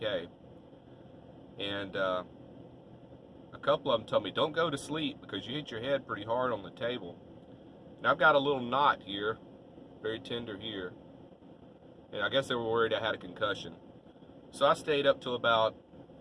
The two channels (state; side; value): identical; both; correlation 1.00